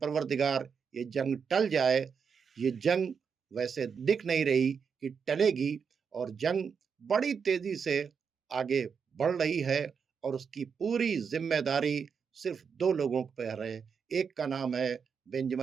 ये जंग टल जाए। ये जंग वैसे दिख नहीं रही कि टलेगी, और जंग बड़ी तेजी से आगे बढ़ रही है, और उसकी पूरी जिम्मेदारी सिर्फ 2 लोगों पर है। एक का नाम है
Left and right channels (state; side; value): quieter; left; 6.3 dB